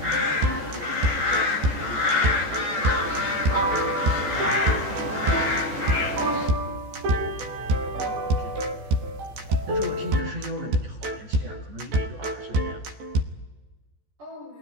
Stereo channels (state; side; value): late; left; 14 ms